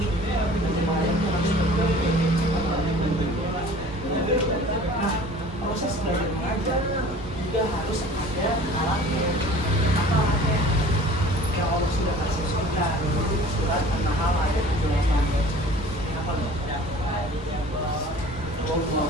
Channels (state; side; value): normal; both; correlation 0.46